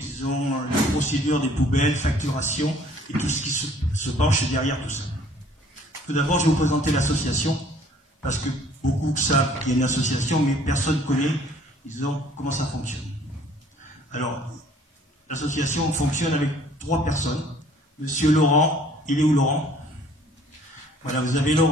la procédure des poubelles, facturation et tout ce qui se penche derrière tout ça. Tout d'abord, je vais vous présenter l'association, parce que beaucoup savent qu'il y a une association, mais personne ne connaît, disons, comment ça fonctionne. Alors, l'association fonctionne avec 3 personnes. Monsieur Laurent, il est où Laurent? Voilà, vous avez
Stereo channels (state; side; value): normal; both; correlation 0.56